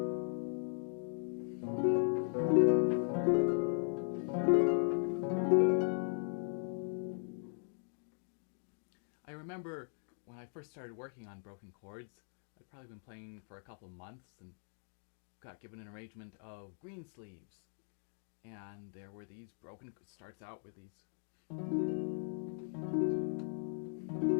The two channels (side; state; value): right; silent; digital silence